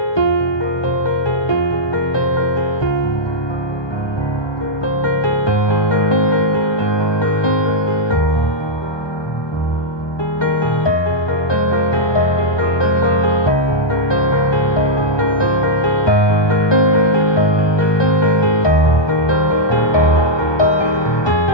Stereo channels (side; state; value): right; late; 1.2 ms